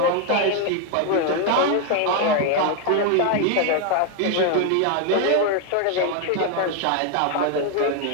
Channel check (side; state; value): both; different; correlation 0.01